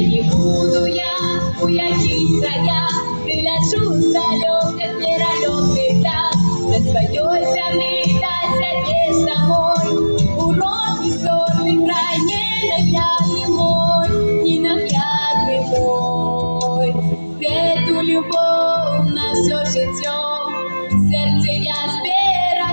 не буду я, у яких краях, приляжу в далеких миролюбных дат, на своей земле до себе самой. Урок исторный край ненаглядный мой, ненаглядный мой. Эту любовь на все життя в сердце я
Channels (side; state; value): both; inverted; correlation -1.00